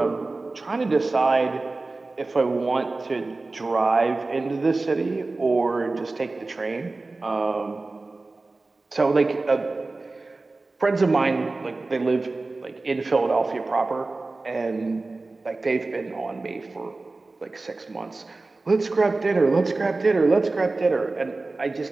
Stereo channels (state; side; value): quieter; left; 3.4 dB